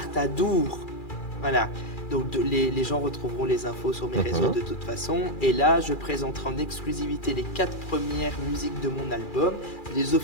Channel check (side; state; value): right; late; 2.4 ms